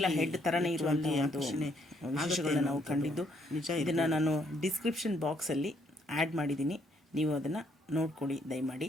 ಹೆಡ್ ಥರನೇ ಇರುವಂಥ ವಿಶೇಷಗಳನ್ನ ನಾವು ಕಂಡಿದ್ದು ನಿಜ. ಇದನ್ನು ನಾನು ಡಿಸ್ಕ್ರಿಪ್ಷನ್ ಬಾಕ್ಸಲ್ಲಿ ಆ್ಯಡ್ ಮಾಡಿದ್ದೀನಿ, ನೀವು ಅದನ್ನು ನೋಡ್ಕೊಳ್ಳಿ ದಯಮಾಡಿ.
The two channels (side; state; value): both; normal; correlation 0.70